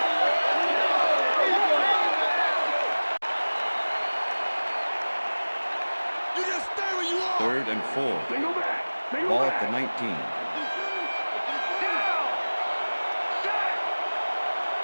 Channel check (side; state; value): both; inverted; correlation -1.00